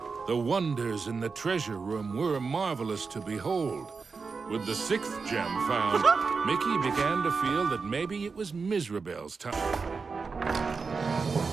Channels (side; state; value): left; quieter; 4.8 dB